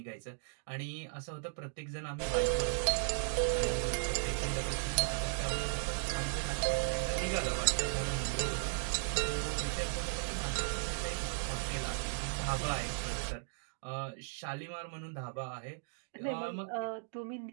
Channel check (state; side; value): silent; left; digital silence